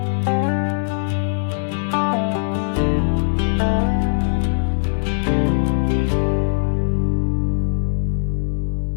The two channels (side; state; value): right; silent; digital silence